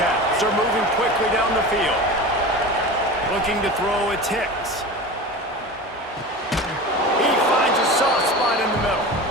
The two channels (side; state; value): both; normal; correlation 0.31